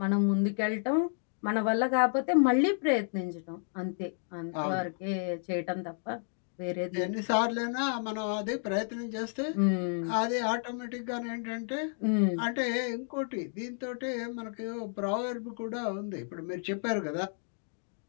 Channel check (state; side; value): silent; right; 57 dB below the other